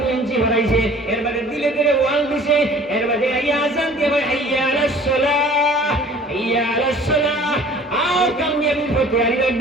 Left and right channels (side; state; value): both; normal; correlation 0.49